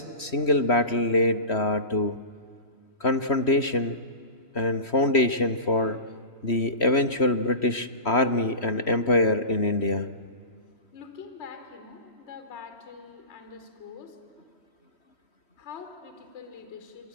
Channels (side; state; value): right; late; 3.1 ms